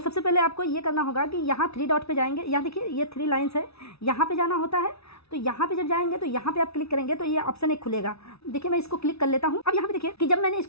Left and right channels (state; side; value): late; right; 0.79 ms